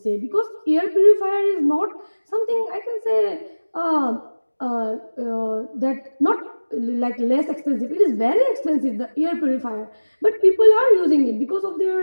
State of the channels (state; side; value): inverted; both; correlation -1.00